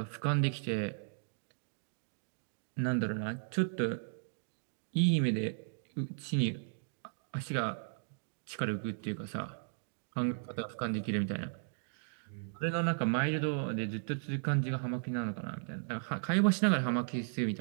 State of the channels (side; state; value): left; silent; digital silence